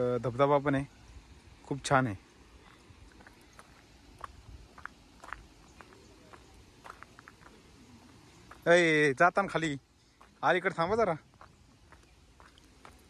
धबधबा पण आहे, खूप छान आहे. अय जाताना खाली अलीकडे थांबा जरा.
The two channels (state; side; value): identical; both; correlation 1.00